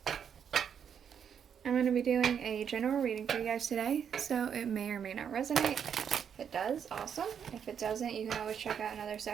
going to be doing a general reading for you guys today, so it may or may not resonate. If it does, awesome. If it doesn't, you can always check out another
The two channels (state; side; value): quieter; left; 7.8 dB